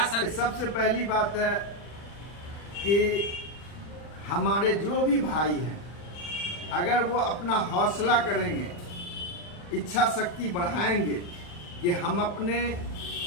सर? सबसे पहली बात है कि हमारे जो भी भाई हैं, अगर वो अपना हौसला करेंगे, इच्छा शक्ति बढ़ाएंगे कि हम अपने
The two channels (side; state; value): right; late; 40 ms